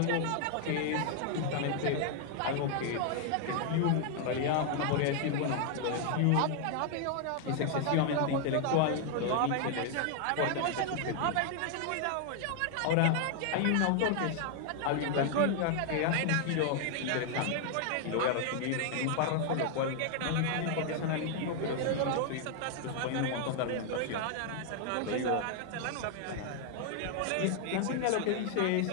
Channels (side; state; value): both; different; correlation 0.00